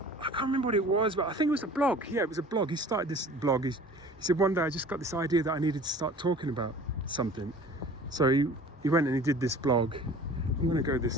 I can't remember what it was, but I think it was a blog. Yeah, it was a blog. He started this blog. He said, one day I just got this idea that I needed to start talking about something. So he went and he did this blog. I'm going to go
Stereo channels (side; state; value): both; normal; correlation 0.45